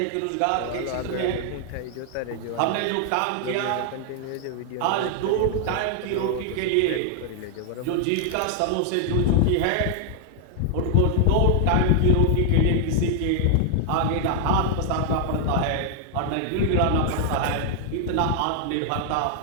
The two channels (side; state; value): both; different; correlation 0.00